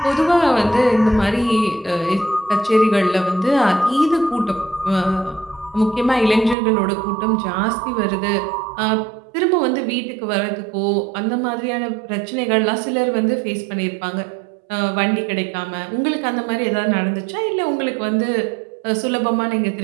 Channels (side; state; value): left; drops out; at 6.6 s